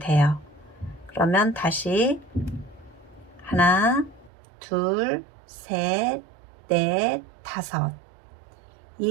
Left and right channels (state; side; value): drops out; left; at 4.3 s